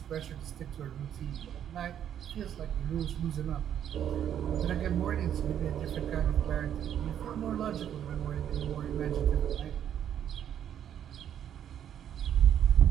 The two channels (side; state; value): left; quieter; 9.8 dB